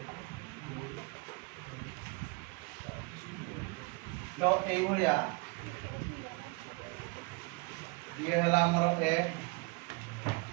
तो एई भलिया ये हला हमर ए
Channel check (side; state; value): left; quieter; 28.5 dB